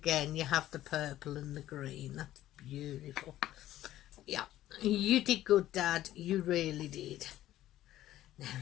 you have the purple and the green. That's beautiful. Yeah, you did good, Dad. You really did. Now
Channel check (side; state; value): right; quieter; 13.8 dB